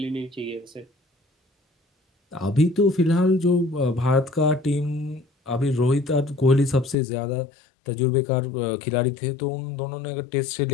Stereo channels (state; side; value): drops out; right; at 7.0 s